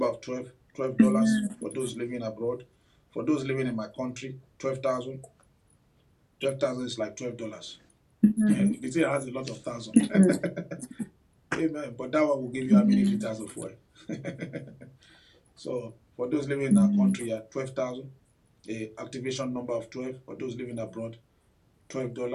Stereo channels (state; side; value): identical; both; correlation 1.00